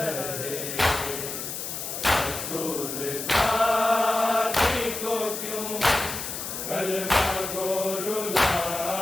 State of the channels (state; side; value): noise; left; hiss, 6 dB below the sound